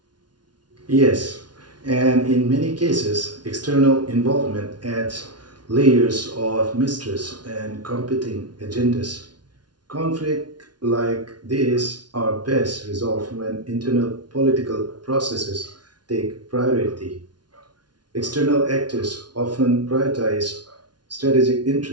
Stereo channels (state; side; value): late; left; 0.70 ms